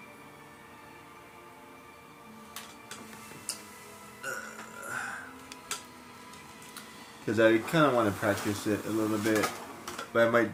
Because I kind of want to practice it a little bit, but I might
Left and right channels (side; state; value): both; identical; correlation 1.00